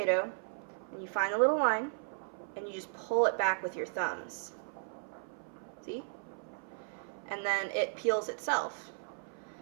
and you find a little line and you just pull it back with your thumbs. See? And then it peels itself.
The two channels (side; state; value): left; silent; 54 dB below the other